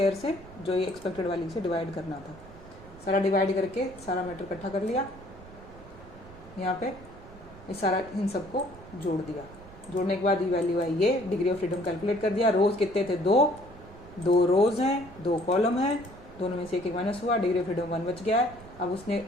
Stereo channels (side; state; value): right; noise; rumble, 19 dB below the sound